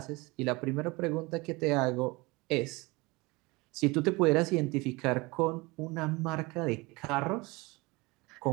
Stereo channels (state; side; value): quieter; left; 24.2 dB